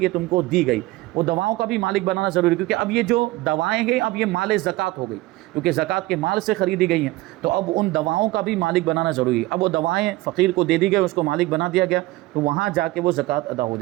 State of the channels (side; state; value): left; quieter; 18.9 dB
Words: یہ تم کو دی گئی، وہ دواؤں کا بھی مالک بنانا ضروری ہے، کیونکہ اب یہ جو دوائیں ہیں اب یہ مال زکوٰۃ ہو گئی، کیونکہ زکوٰۃ کے مال سے خریدی گئی ہیں، تو اب ان دواؤں کا بھی مالک بنانا ضروری ہے۔ اب وہ دوائیں فقیر کو دے دی گئی، اس کو مالک بنا دیا گیا، تو وہاں جا کے وہ زکوٰۃ ادا ہو